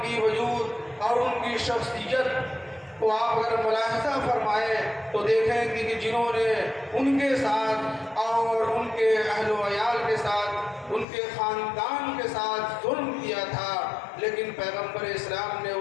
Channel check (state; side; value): drops out; right; at 11.1 s